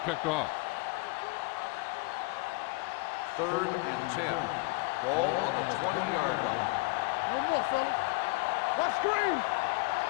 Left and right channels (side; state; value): right; quieter; 25.1 dB